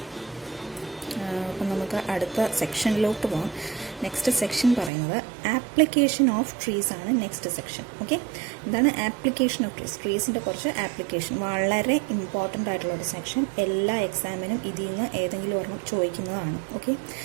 അപ്പം നമുക്ക് അടുത്ത സെക്ഷനിലോട്ട് പോകാം. നെക്സ്റ്റ് സെക്ഷൻ പറയുന്നത് ആപ്ലിക്കേഷൻ ഓഫ് ട്രീസ് ആണ്. Next section. ഓക്കെ, എന്താണ് ആപ്ലിക്കേഷൻ ഓഫ് ട്രീസ്? ട്രീസിൻ്റെ കുറച്ച് ആപ്ലിക്കേഷൻ, വളരെ ഇമ്പോർട്ടൻ്റ് ആയിട്ടുള്ള ഒരു സെക്ഷൻ. എല്ലാ എക്സാമിനും ഇതിൽ നിന്ന് ഏതെങ്കിലും ഒരെണ്ണം ചോദിക്കുന്നതാണ്. ഓക്കെ,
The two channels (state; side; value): drops out; left; at 4.9 s